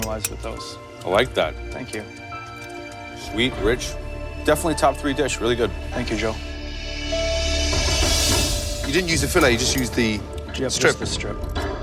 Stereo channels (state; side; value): identical; both; correlation 1.00